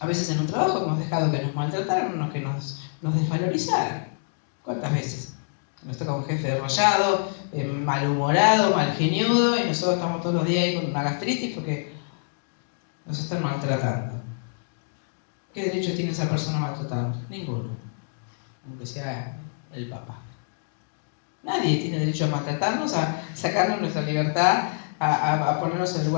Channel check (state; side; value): silent; right; digital silence